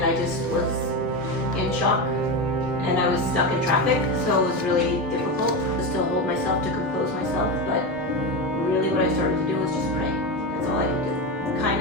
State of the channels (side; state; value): both; normal; correlation 0.16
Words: I just was in shock, and I was stuck in traffic, so it was really difficult to still hold myself, to compose myself, but really what I started to do was just pray. That's all I could do. Kind